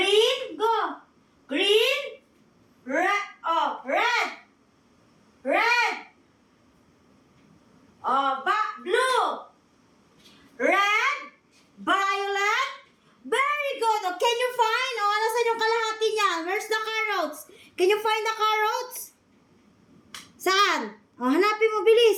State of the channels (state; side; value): identical; both; correlation 1.00